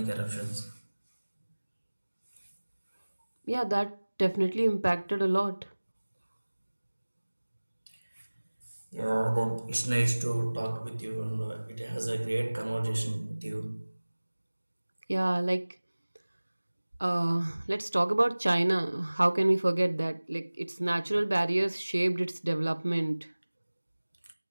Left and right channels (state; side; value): inverted; both; correlation -1.00